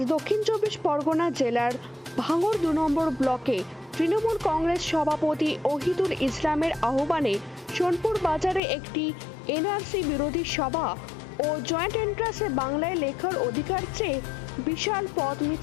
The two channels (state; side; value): drops out; right; at 8.6 s